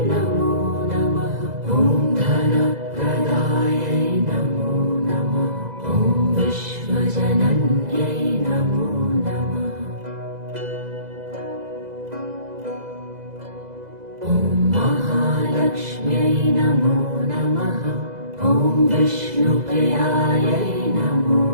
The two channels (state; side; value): late; left; 2.0 ms